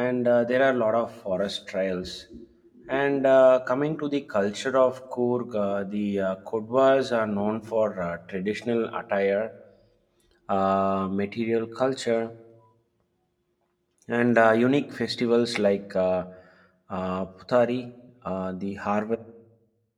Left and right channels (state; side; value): identical; both; correlation 1.00